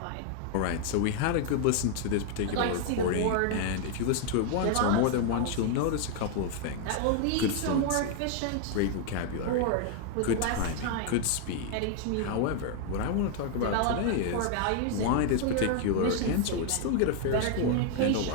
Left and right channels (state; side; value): different; both; correlation 0.00